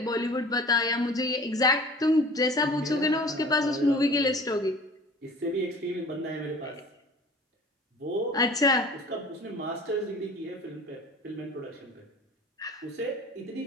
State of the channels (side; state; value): both; normal; correlation 0.44